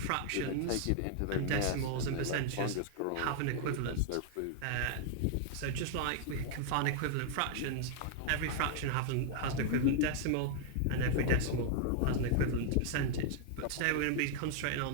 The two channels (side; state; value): both; different; correlation 0.00